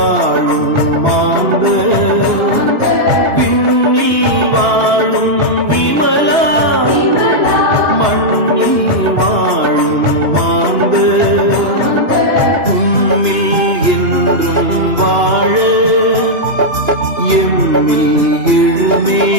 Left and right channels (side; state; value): left; late; 2.9 ms